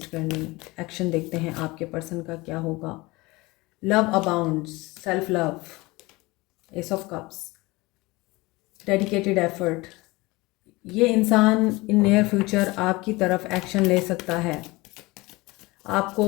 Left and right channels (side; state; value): right; quieter; 22.4 dB